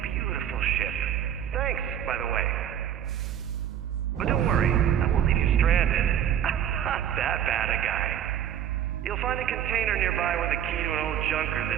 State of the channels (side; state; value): left; quieter; 9.9 dB